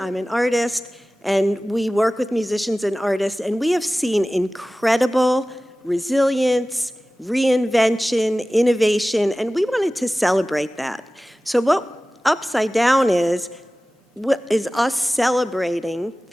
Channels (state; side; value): normal; both; correlation 0.97